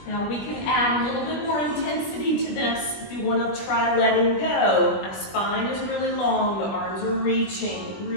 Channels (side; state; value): right; late; 20 ms